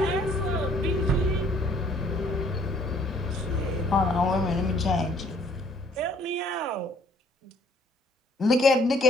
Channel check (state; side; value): normal; both; correlation 0.61